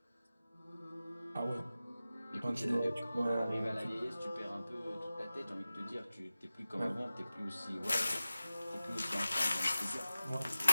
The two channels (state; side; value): inverted; both; correlation -0.96